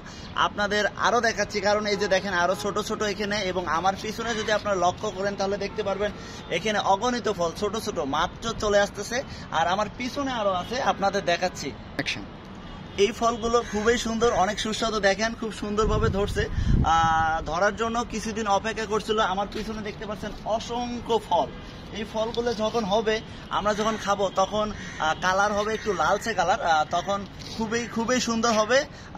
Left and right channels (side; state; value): both; identical; correlation 1.00